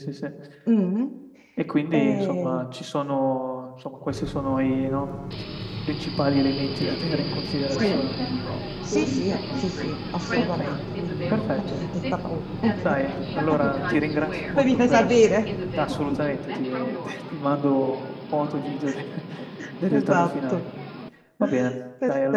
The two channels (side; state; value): both; identical; correlation 1.00